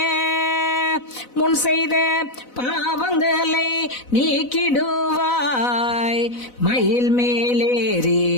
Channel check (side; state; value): right; late; 4.0 ms